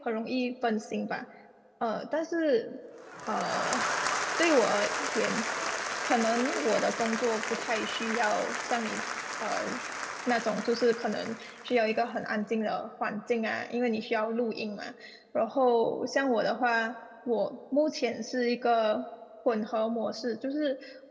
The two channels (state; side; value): identical; both; correlation 1.00